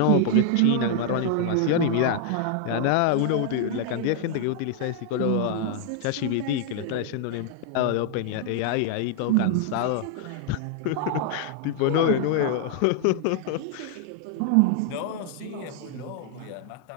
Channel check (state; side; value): different; both; correlation 0.00